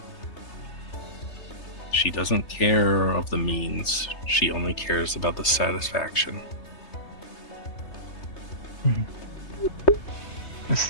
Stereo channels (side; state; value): right; late; 3.2 ms